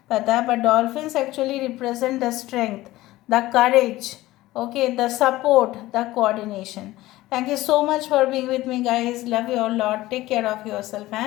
पता, but dolphins actually represent the strength, the courage, okay, the support, the coordination. Thank you so much for being with me, guys. Love you all lot. Take care of yourself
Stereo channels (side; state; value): right; quieter; 17.2 dB